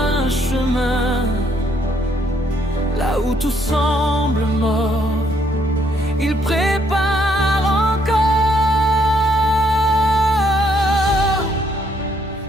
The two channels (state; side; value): normal; both; correlation 0.69